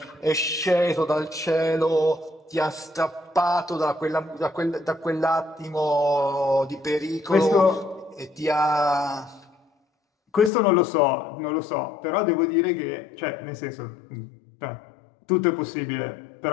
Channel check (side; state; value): right; drops out; at 10.5 s